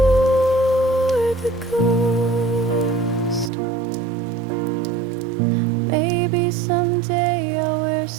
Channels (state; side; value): drops out; left; at 3.5 s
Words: wore the ghost. Maybe someday I'll wear